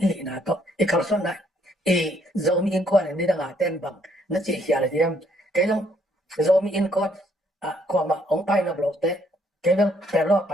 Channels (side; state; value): both; normal; correlation 0.68